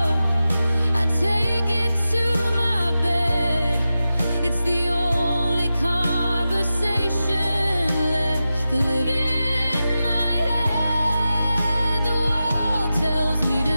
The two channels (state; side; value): inverted; both; correlation -0.92